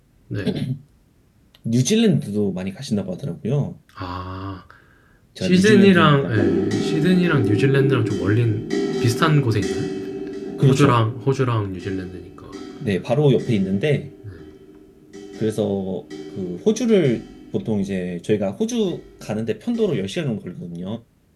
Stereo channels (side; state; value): both; identical; correlation 1.00